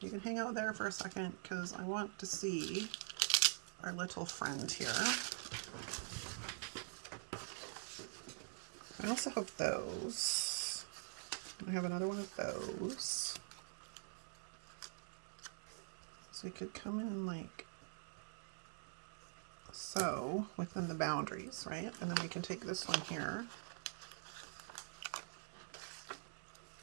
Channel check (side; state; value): left; silent; digital silence